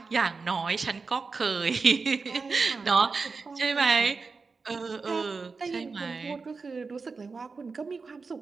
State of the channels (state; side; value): quieter; left; 4.5 dB